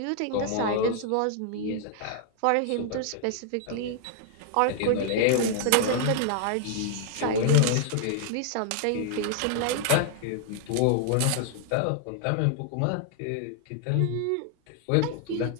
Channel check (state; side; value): different; both; correlation -0.01